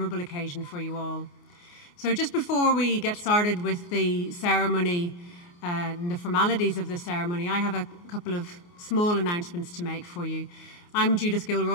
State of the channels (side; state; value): right; late; 29 ms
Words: occasion for you all. So just before we get started with the ceremony and the formalities of the ceremony, I have a couple of small announcements to make for you. I'm Judith